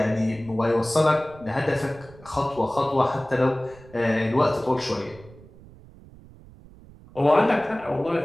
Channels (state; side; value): noise; right; rumble, 22 dB below the sound